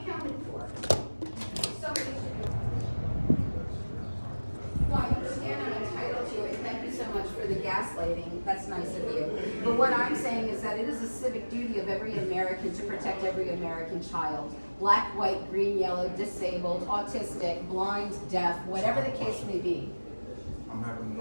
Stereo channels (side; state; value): both; inverted; correlation -1.00